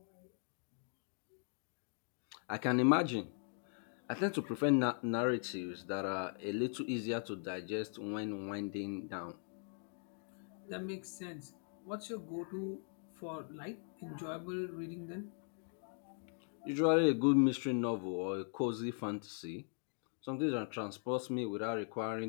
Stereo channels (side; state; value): right; silent; 51 dB below the other